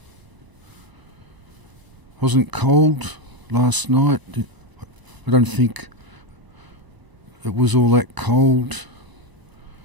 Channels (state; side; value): late; left; 1.0 ms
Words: Wasn't cold last night. I don't think it was all that cold.